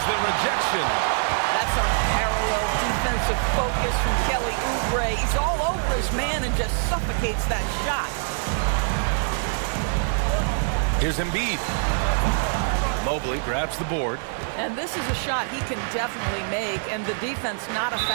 the rejection. That's unparalleled defensive focus from Kelly Oubre. He's all over his man and just suffocates that shot. Here's Embiid. Mobley grabs the board. And this is a shot he can definitely make, and the defense not a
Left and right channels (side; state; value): left; silent; digital silence